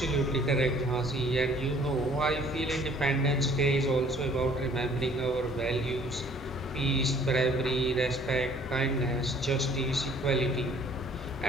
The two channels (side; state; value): both; normal; correlation 0.57